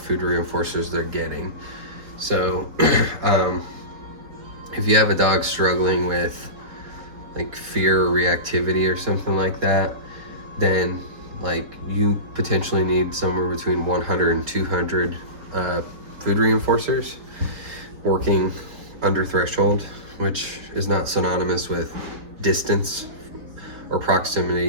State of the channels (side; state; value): left; late; 4.5 ms